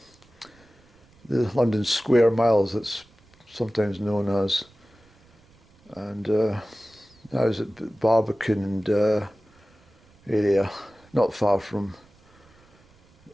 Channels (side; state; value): right; noise; rumble, 30 dB below the sound